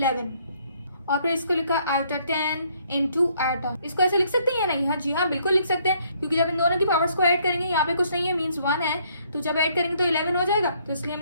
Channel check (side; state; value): both; inverted; correlation -0.66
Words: और फिर इसको लिखा आयोटा 10 इंटू आयोटा। इसको ऐसे लिख सकते हैं या नहीं? हाँ जी हाँ, बिल्कुल लिख सकते हैं, क्योंकि जब इन दोनों की पावर्स को ऐड करेंगे, यहाँ पे कुछ नहीं है मीन्स 1 है, तो जब ऐड करेंगे तो 11 हो जाएगा, तो इसलिए